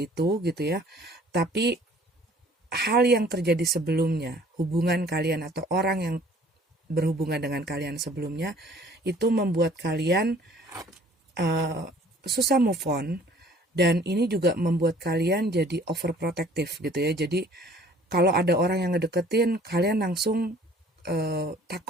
itu gitu ya. Tapi hal yang terjadi sebelumnya, hubungan kalian atau orang yang berhubungan dengan kalian sebelumnya, itu membuat kalian susah move on, dan ini juga membuat kalian jadi overprotective gitu ya. Jadi kalau ada orang yang ngedeketin, kalian langsung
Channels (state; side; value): normal; both; correlation 0.54